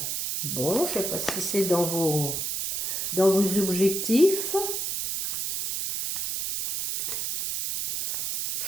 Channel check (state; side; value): noise; right; hiss, 2 dB below the sound